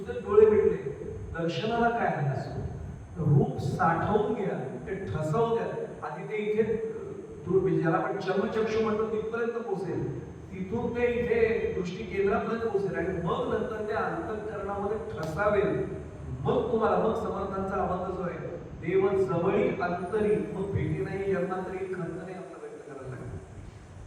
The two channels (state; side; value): identical; both; correlation 1.00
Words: डोळे मिटले दर्शनाला काय आहे असं. रूप साठवून घ्या ते ठसवू द्या. आधी ते इथे ज्याला आपण चर्मचक्षु म्हणतो तिथपर्यंत पोहोचेल तिथून ते इथे दृष्टी केंद्रापर्यंत पोहोचेल आणि मग नंतर त्या अंतःकरणामध्ये ठसावेल. मग तुम्हाला मग समर्थांचा आवाज जो आहे देव जवळी अंतरी मग भेटी नाही जन्मांतरी खंत नाही आपला व्यक्त करायला लागेल.